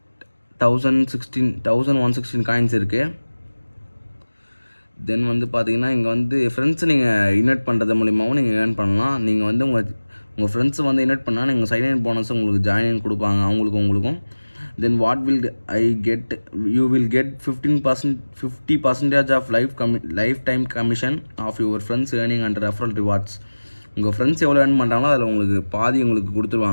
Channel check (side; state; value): both; inverted; correlation -1.00